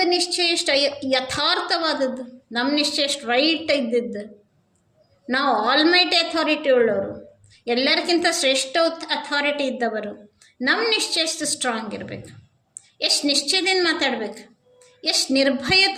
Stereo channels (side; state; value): both; identical; correlation 1.00